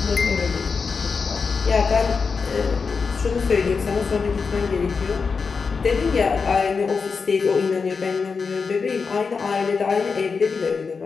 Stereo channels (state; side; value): quieter; right; 5.1 dB